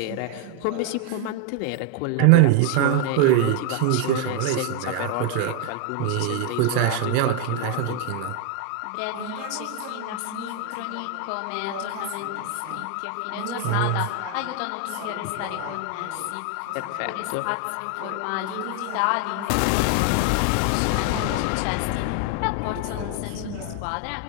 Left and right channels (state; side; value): different; both; correlation 0.01